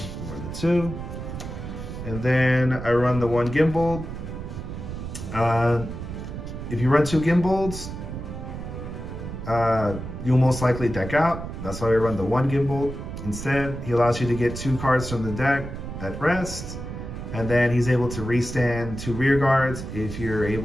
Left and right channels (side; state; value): right; noise; rumble, 8 dB below the sound